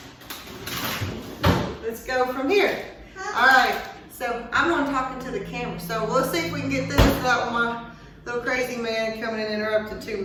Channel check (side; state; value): both; identical; correlation 1.00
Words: let's go from here. All right, so I'm on talking to the camera. So let's see if we can get this without my little crazy man coming and interrupting too